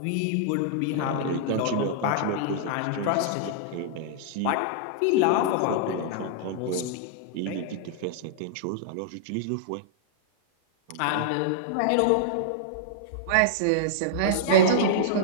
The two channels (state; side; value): different; both; correlation -0.02